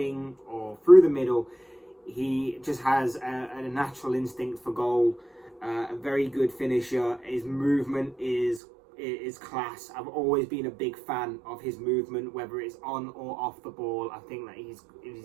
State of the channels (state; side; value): drops out; left; at 8.6 s